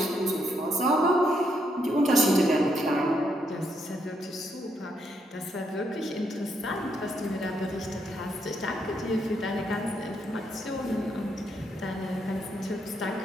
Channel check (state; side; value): normal; both; correlation 0.77